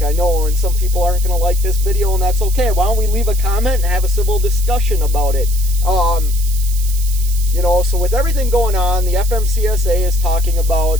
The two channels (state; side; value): noise; right; hiss, 11 dB below the sound